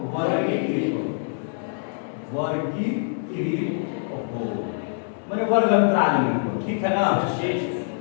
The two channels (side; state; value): right; silent; digital silence